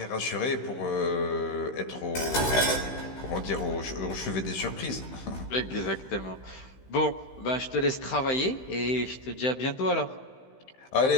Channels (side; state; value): right; late; 15 ms